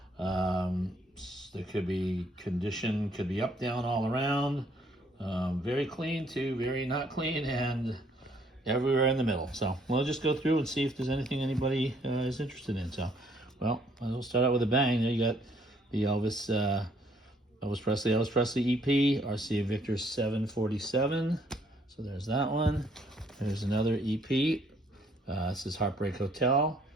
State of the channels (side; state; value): both; normal; correlation 0.65